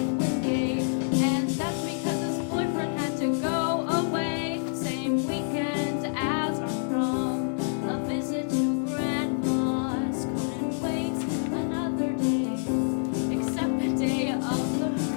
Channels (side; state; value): right; silent; digital silence